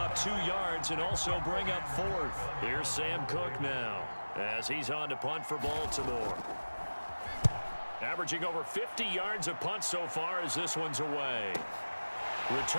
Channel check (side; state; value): both; inverted; correlation -1.00